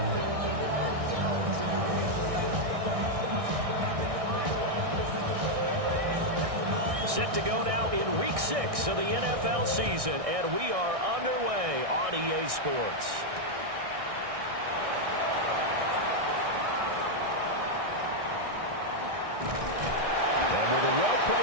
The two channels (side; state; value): left; late; 1.6 ms